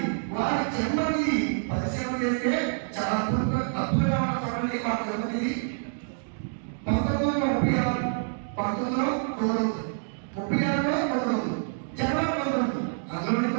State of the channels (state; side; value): silent; left; digital silence